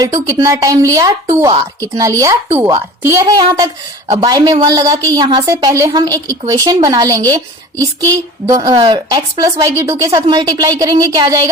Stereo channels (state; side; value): normal; both; correlation 0.39